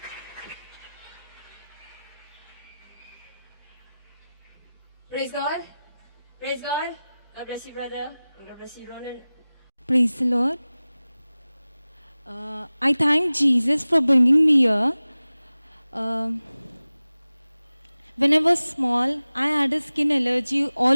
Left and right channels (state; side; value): inverted; both; correlation -0.97